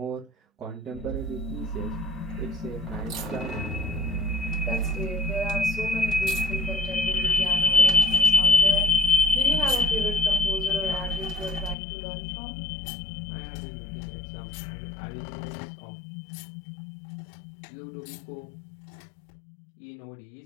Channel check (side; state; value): right; drops out; at 11.8 s